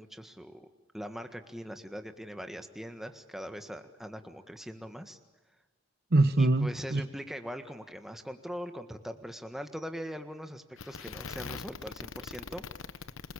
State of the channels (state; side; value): normal; both; correlation 0.84